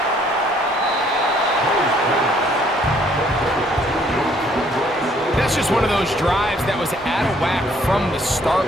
That's just one of those drives that was out of whack from the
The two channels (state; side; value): normal; both; correlation 0.63